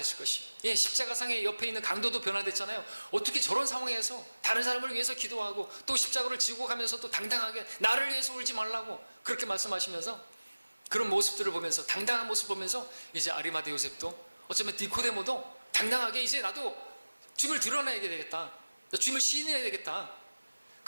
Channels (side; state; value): both; inverted; correlation -1.00